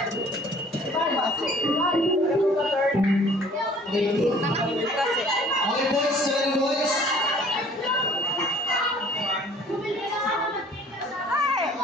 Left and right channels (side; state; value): both; normal; correlation 0.54